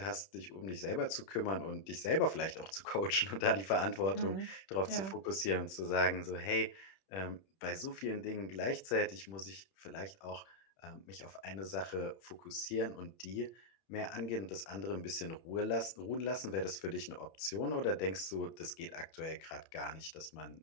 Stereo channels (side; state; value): right; late; 31 ms